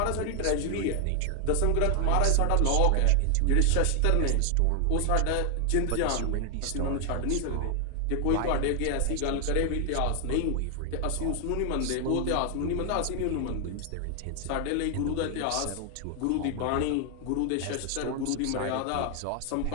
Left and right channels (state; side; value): different; both; correlation 0.00